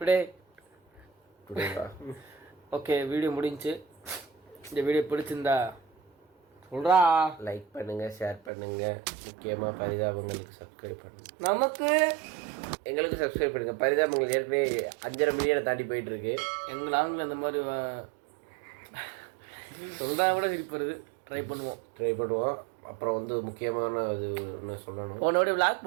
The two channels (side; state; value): left; drops out; at 8.5 s